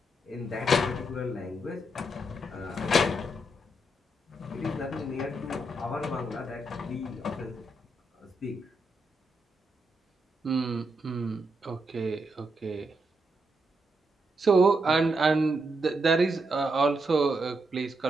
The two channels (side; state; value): both; normal; correlation 0.81